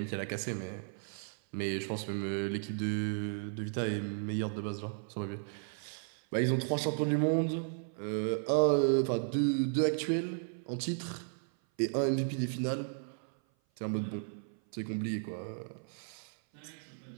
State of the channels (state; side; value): silent; left; 55 dB below the other